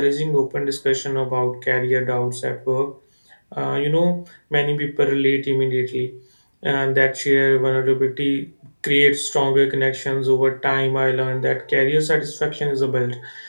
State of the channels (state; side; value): inverted; both; correlation -1.00